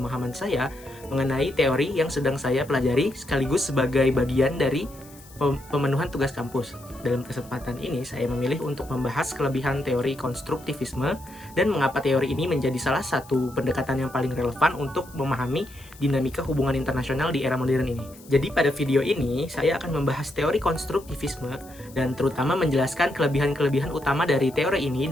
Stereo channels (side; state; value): left; noise; hiss, 23 dB below the sound